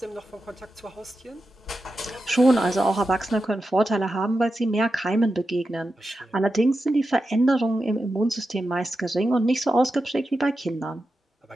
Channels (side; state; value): both; normal; correlation 0.90